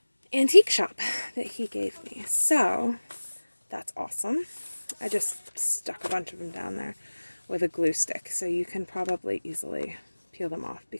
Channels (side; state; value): both; inverted; correlation -1.00